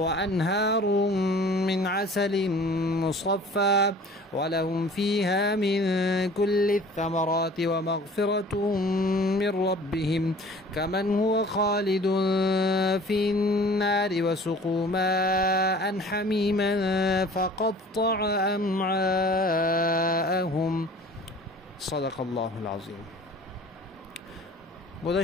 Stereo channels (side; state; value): both; normal; correlation 0.47